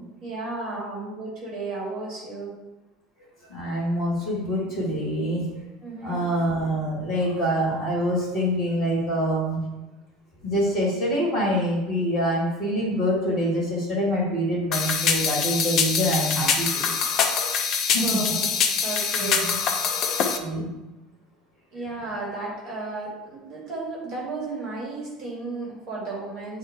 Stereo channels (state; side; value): normal; both; correlation 0.38